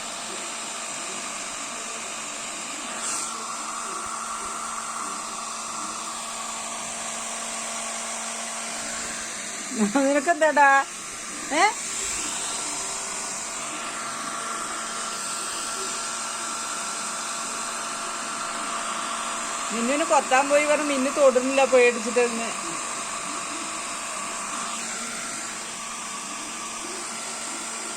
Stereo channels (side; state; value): both; identical; correlation 1.00